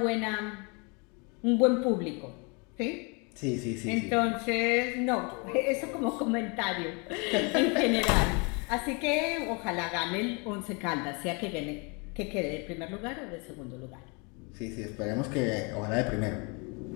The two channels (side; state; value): right; quieter; 31.7 dB